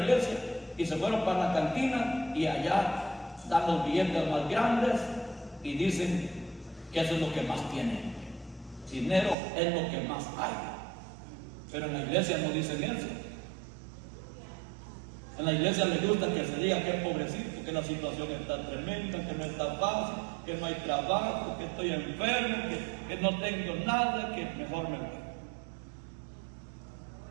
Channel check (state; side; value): drops out; left; at 9.3 s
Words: y se fueron para la cantina y allá dan los billetes más grandes y dicen que eso es lo que más tienen. Dinero es lo que más hay. Pero en la iglesia no dicen eso. En la iglesia les gusta que se diga que es pobrecito, que la situación está tremenda, que no está fácil, que no hay trabajo, que estoy enfermo, que no tengo nada, que mejor me voy.